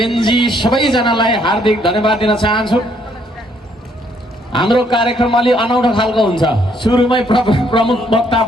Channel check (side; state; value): both; normal; correlation 0.68